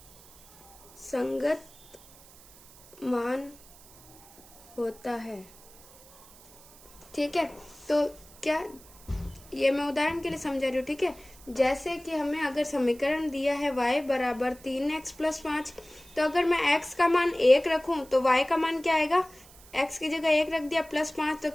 संगत मान होता है। ठीक है, तो क्या ये मैं उदाहरण के लिए समझा रही हूँ। ठीक है, जैसे कि हमें अगर समीकरण दिया है y बराबर 3x + 5, तो अगर मैं x का मान 1 रखूं तो y का मान क्या आएगा, x की जगह 1 रख दिया +5 तो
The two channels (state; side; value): noise; right; hiss, 23 dB below the sound